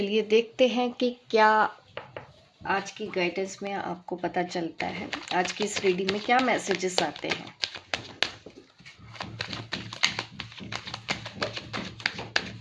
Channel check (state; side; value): identical; both; correlation 1.00